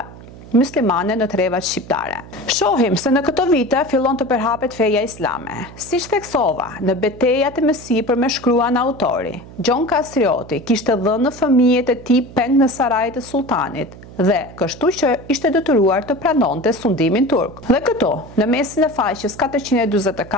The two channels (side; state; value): right; noise; hum, 17 dB below the sound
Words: muslimane në trevat shqiptare. Shohim se në këto vite fillon të përhapet feja islame. Siç theksova, në betejat e mësipër me shkruan autori, Gjon Kastrioti kishte dhënë fëmijët e tij peng në sarajt e sultanit, dhe kështu që ishte detyruar të pranonte sundimin turk. Dhe këtu, në mesin e faqes